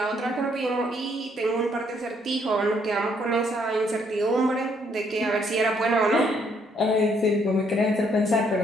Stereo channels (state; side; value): normal; both; correlation 0.69